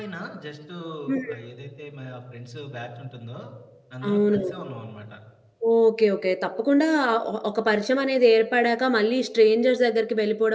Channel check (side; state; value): both; identical; correlation 1.00